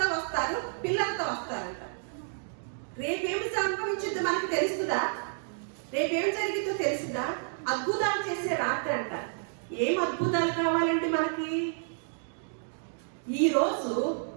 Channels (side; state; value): left; silent; digital silence